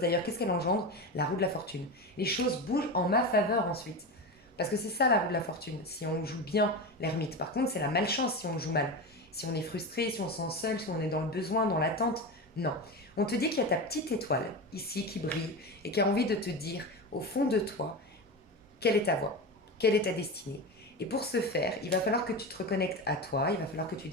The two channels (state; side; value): normal; both; correlation 0.22